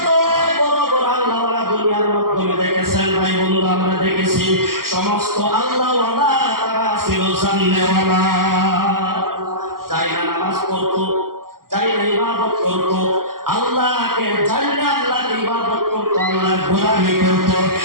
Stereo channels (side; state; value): left; late; 0.92 ms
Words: আল্লাহওয়ালা দুনিয়ার মাধ্যমে দেখেছেন ভাই বন্ধু, আমরা দেখেছি সমস্ত আল্লাহওয়ালা তারা ছিল জান্নেওয়ালা। যাই না নামাজ পড়তো, যাই না ইবাদত করতো, আল্লাহকে জানলে আল্লাহকে ইবাদত করতো, আল্লাহ গোলামি করতো,